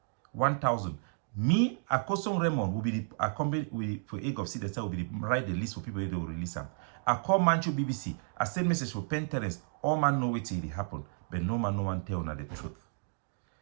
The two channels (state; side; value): silent; left; digital silence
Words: 1,000. Me, Akosong Raymond will be the accompany for egg of seed that will be the write the list for people they will release them. I call Manchu BBC. I send message for Pen Terence. All man know what it happen, but no one tell na the truth.